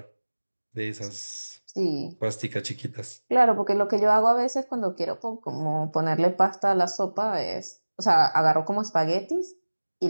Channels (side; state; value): both; inverted; correlation -1.00